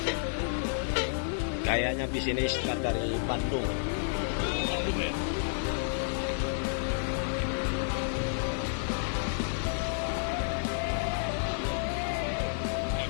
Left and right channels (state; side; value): silent; right; digital silence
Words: Kayaknya bis ini start dari Bandung.